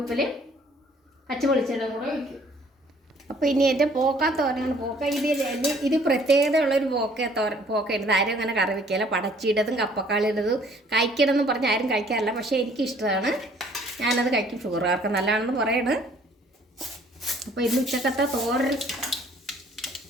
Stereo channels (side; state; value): both; normal; correlation 0.58